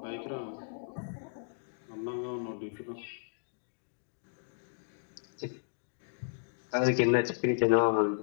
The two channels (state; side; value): silent; right; digital silence